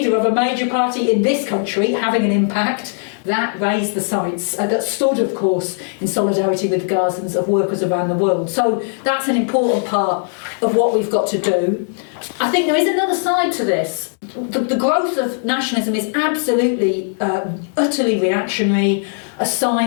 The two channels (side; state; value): right; silent; 61 dB below the other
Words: of a major party in this country having an impact, that raised the sights, that stood, of course, in solidarity with the Gazans, of workers around the world. So that's an important part of what we've got to do. I think there is another side to this. The growth of nationalism is absolutely, utterly reactionary, a